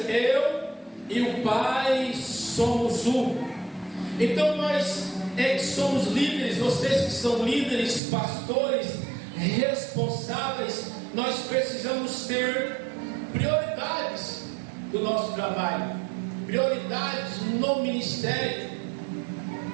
Eu e o Pai somos um. Então nós que somos líderes, vocês que são líderes, pastores, responsáveis, nós precisamos ter prioridades. do nosso trabalho, prioridades no ministério.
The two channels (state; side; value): drops out; left; at 8.0 s